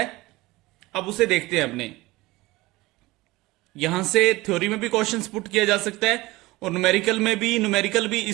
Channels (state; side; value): quieter; left; 20.4 dB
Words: अब उसे देखते हैं अपने। यहां से थ्योरी में भी क्वेश्चंस पुट किया जा सकता है और न्यूमेरिकल में भी। न्यूमेरिकल भी